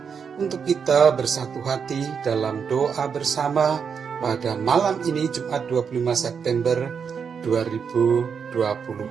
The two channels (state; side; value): quieter; left; 6.5 dB